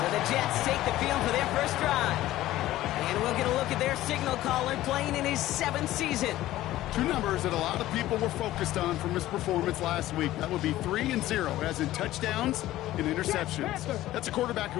the Jets take the field for their first drive. And we'll get a look at their signal caller playing in his 7th season. 2 numbers that a lot of people were focused on from his performance last week. That would be 3 and 0, as in touchdowns and interceptions. That's a quarterback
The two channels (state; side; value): quieter; right; 15.2 dB